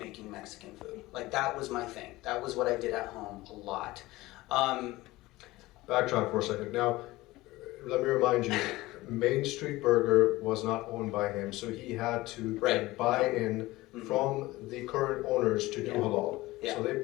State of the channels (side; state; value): right; quieter; 19.1 dB